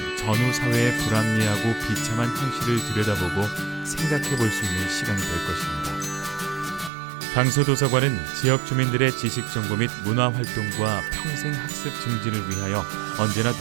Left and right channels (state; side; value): drops out; left; at 6.9 s